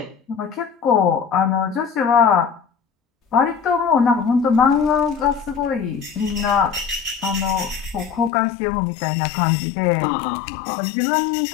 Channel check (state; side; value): drops out; right; at 8.3 s